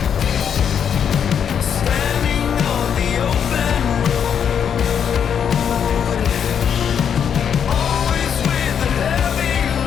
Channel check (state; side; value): quieter; right; 8.0 dB